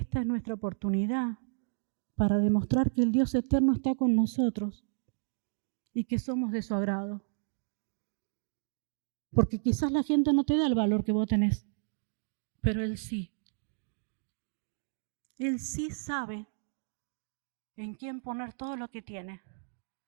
es nuestra oportunidad para demostrar que el Dios eterno está con nosotros y que somos de su agrado. Porque quizás la gente no te da el valor que vos tenés, pero Él sí. Él sí sabe en quién poner todo lo que tiene.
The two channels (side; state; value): left; silent; digital silence